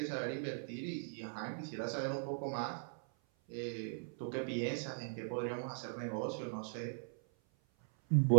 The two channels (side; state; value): left; silent; 50 dB below the other